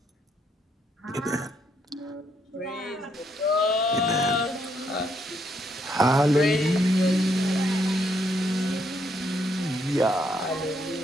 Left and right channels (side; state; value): both; normal; correlation 0.74